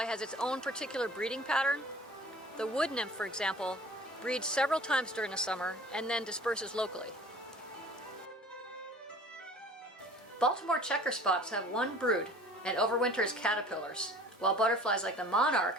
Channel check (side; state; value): both; normal; correlation 0.47